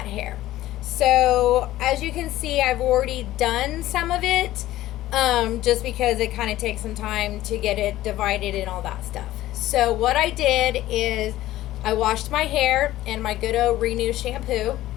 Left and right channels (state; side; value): quieter; right; 15.1 dB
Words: hair. So as you can see, I've already done some of it just because it kind of takes some time to get it divided and all that stuff. So what I did is I washed my hair in my good old Renew shampoo.